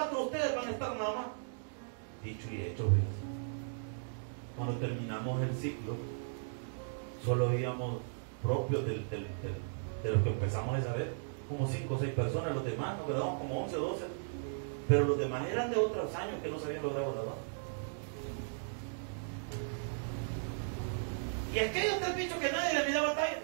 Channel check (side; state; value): left; silent; digital silence